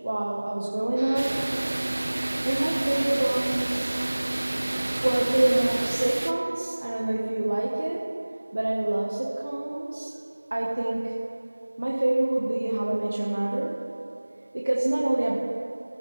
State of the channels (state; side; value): inverted; both; correlation -1.00